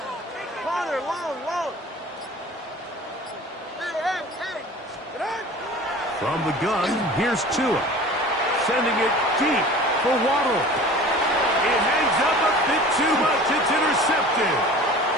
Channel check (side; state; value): both; normal; correlation 0.42